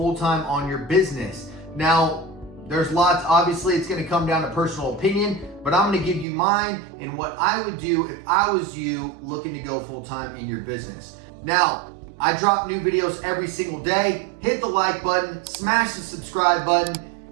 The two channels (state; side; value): drops out; left; at 6.2 s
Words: on your business. Now, there's lots, obviously it's going to come down to personal opinion, but I'm going to give you mine and what I would do if I was you looking to go full-time in your business. Now, I drop new videos every single day. Hit the like button, smash the subscribe button.